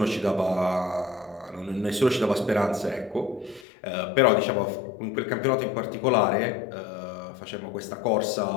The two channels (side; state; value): right; drops out; at 3.7 s